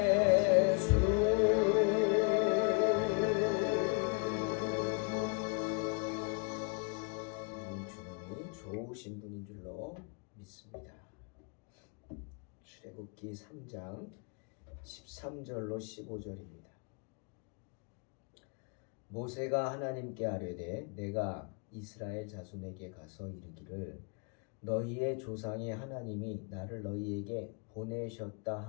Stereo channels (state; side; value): quieter; right; 36.7 dB